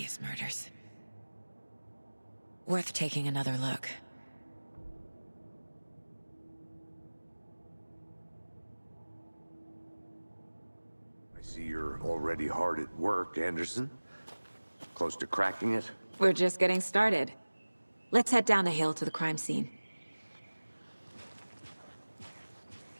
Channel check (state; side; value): inverted; both; correlation -1.00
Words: murders. Worth taking another look. I see you're already hard at work, Anderson. Close to cracking it? We're just getting started. Let's head down the hill to the crime scene.